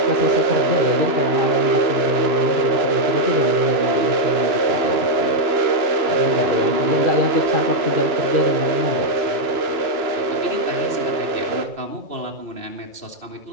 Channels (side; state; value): left; late; 2.9 ms